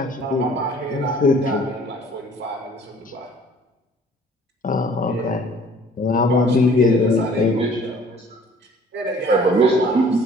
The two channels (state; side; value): normal; both; correlation 0.53